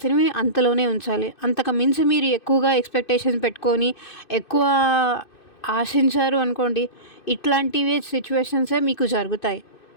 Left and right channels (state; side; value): late; right; 2.6 ms